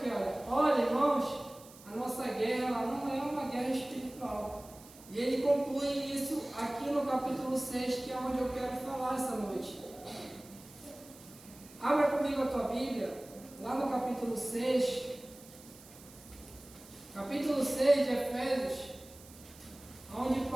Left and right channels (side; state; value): right; noise; hiss, 21 dB below the sound